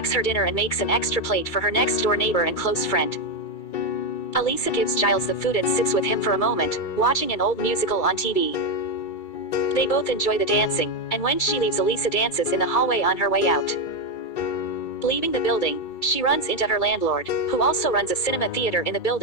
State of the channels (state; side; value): late; right; 2.3 ms